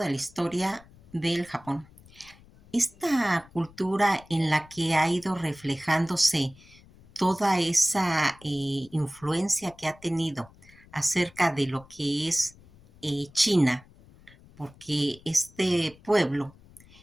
la historia del Japón. Esta cultura en la que ha ido reflejándose toda esa influencia que ha tenido acerca de lo que es China, porque este pueblo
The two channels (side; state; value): left; noise; rumble, 25 dB below the sound